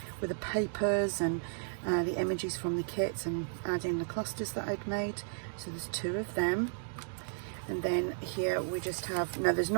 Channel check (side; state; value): left; silent; digital silence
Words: with the papers and the images from the kits and adding the clusters that I'd made. So there's 2 of them. And then here we just have, now there's